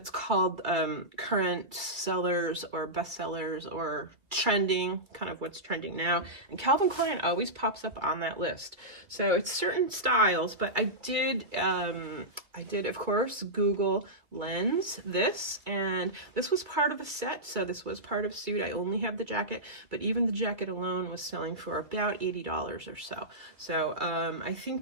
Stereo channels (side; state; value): left; late; 2.1 ms